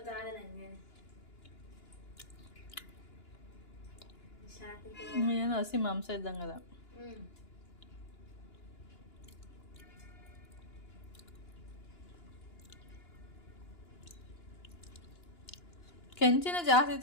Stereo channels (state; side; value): late; right; 2.9 ms